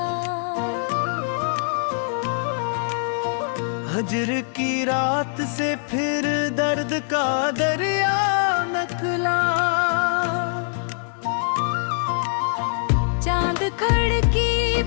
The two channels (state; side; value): silent; right; 55 dB below the other